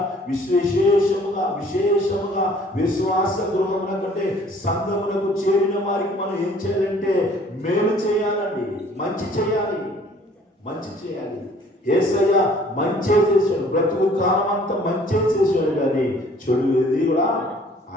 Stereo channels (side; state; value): both; normal; correlation 0.55